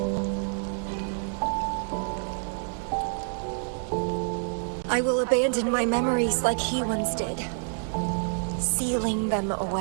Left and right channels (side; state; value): left; silent; 60 dB below the other